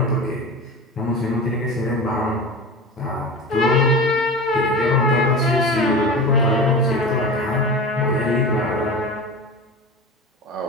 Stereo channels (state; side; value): normal; both; correlation 0.30